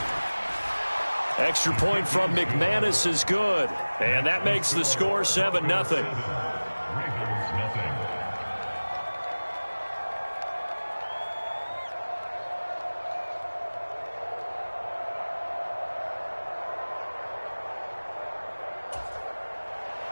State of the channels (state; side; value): inverted; both; correlation -1.00